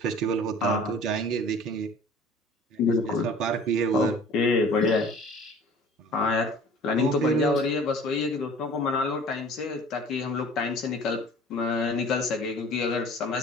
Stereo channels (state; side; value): normal; both; correlation 0.46